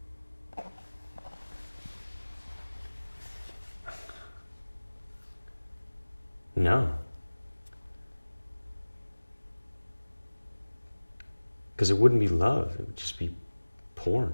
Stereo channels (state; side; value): inverted; both; correlation -1.00